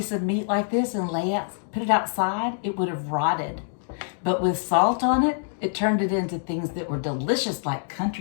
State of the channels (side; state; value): right; silent; digital silence